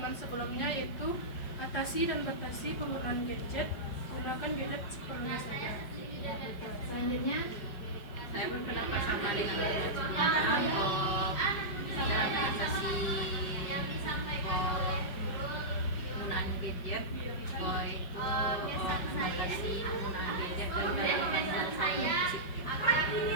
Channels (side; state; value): right; late; 5.1 ms